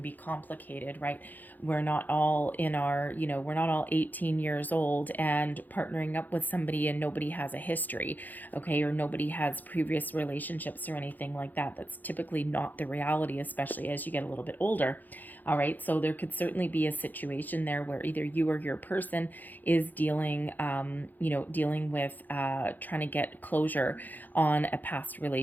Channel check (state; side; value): late; right; 0.085 ms